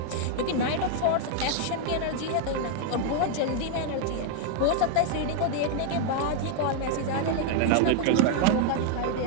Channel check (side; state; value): both; different; correlation 0.00